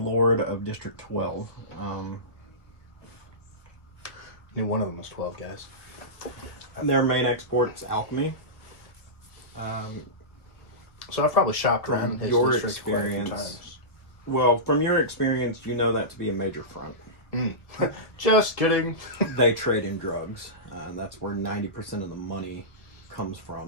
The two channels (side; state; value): right; late; 1.1 ms